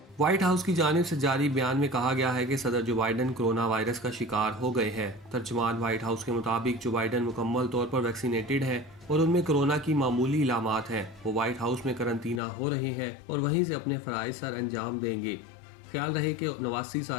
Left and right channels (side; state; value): right; drops out; at 12.4 s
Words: وائٹ ہاؤس کی جانب سے جاری بیان میں کہا گیا ہے کہ صدر جو بائیڈن کرونا وائرس کا شکار ہو گئے ہیں۔ ترجمان وائٹ ہاؤس کے مطابق جو بائیڈن مکمل طور پر ویکسینیٹڈ ہیں اور ان میں کرونا کی معمولی علامات ہیں۔ وہ وائٹ ہاؤس میں قرنطینہ ہو رہے ہیں اور وہیں سے اپنے فرائض سر انجام دیں گے۔ خیال رہے کہ 89